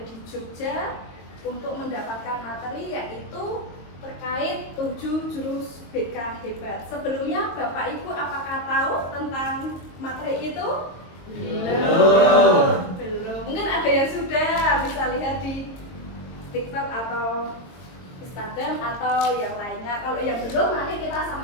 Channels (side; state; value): right; late; 22 ms